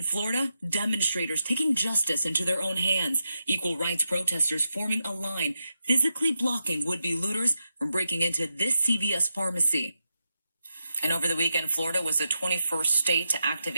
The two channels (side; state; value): both; inverted; correlation -0.87